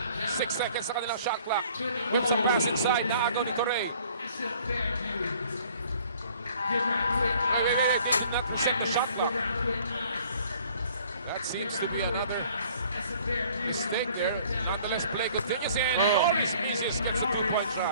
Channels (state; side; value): inverted; both; correlation -0.55